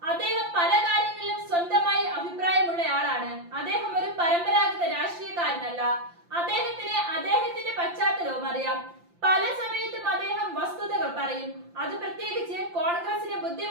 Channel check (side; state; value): left; late; 5.8 ms